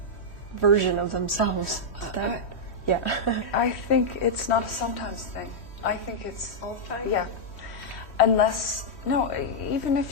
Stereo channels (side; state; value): right; late; 3.1 ms